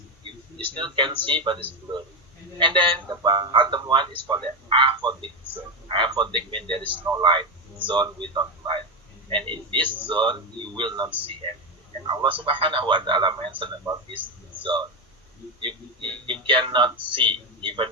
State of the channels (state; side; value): normal; both; correlation 0.11